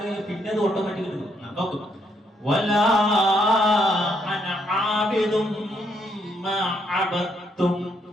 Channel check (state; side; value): normal; both; correlation 0.74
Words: കഴിഞ്ഞാൽ പിന്നെ അത് ഓട്ടോമാറ്റിക് കിട്ടും. നോക്കും. വലാ അന ആബിദും മാ അബദതും.